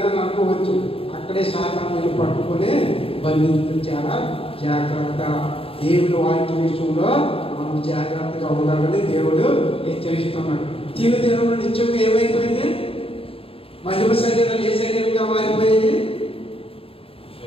అనుకోవచ్చు. అక్కడే శాతం మీరు పట్టుకొని బంధించడం చాలా జాగ్రత్త. దేవుడు వాక్య విషయంలో మనం జాగ్రత్తగా ఉండాలని దేవుడు హెచ్చరిస్తున్నాడు. తినడం నిత్యంగా ఏమైపోయింది? మహిమ శరీరం ఏ శరీరంగా మారిపోయింది?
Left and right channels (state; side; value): late; right; 0.27 ms